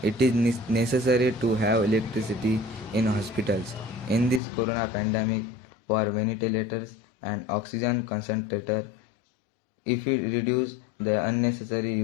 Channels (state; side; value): drops out; right; at 4.4 s